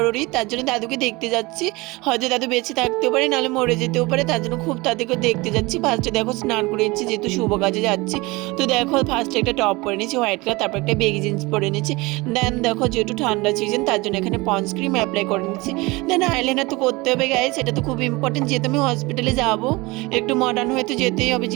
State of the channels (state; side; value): quieter; left; 23.2 dB